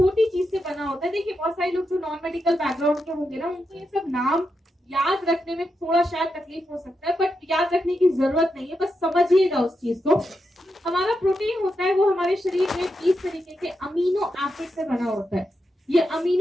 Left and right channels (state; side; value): normal; both; correlation 0.86